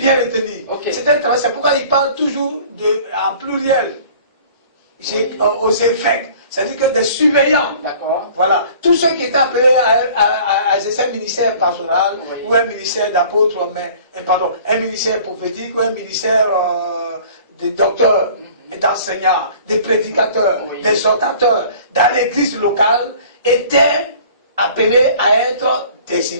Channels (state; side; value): inverted; both; correlation -0.49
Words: le tenir. C'est un travail, c'est pourquoi il parle toujours en pluriel, aux évêques. C'est-à-dire que des surveillants, voilà, tous ceux qui étaient appelés à exercer un ministère pastoral, ou un ministère d'apôtre, un ministère prophétique, ou un ministère de docteurs, d'enseignants, de prédicateurs, d'exhortateurs, dans l'église locale, étaient appelés à être des